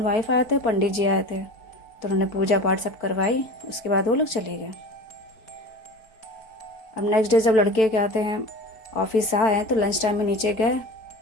वाइफ आए थे, पंडित जी आए थे। तो उन्होंने पूजा पाठ सब करवाई, उसके बाद वो लोग चले गए। अब नेक्स्ट डे जब लड़के के आते हैं ऑफिस से आए हैं तो लंच टाइम में नीचे गए,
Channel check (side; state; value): right; late; 4.5 ms